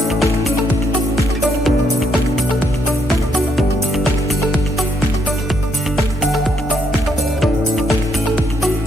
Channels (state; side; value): normal; both; correlation 0.75